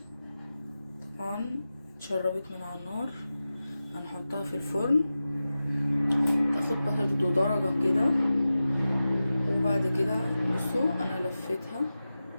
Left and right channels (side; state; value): both; inverted; correlation -0.94